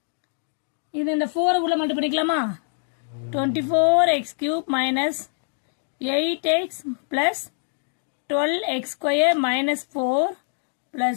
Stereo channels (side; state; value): right; silent; 62 dB below the other